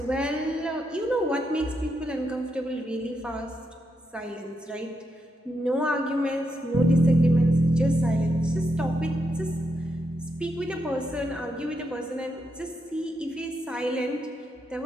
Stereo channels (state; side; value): normal; both; correlation 0.82